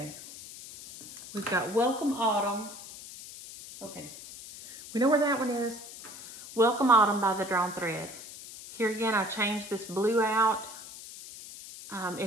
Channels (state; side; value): noise; left; hiss, 14 dB below the sound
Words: we've got Welcome Autumn. Okay, we know where that one is. Welcome Autumn by The Drawn Thread. Here again, I changed this blue out.